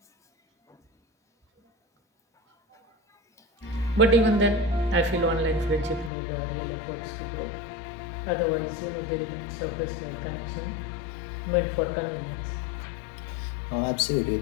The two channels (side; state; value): right; drops out; at 6.1 s